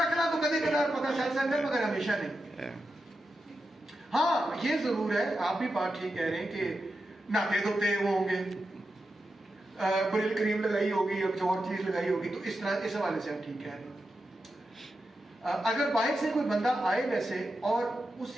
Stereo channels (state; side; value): normal; both; correlation 0.89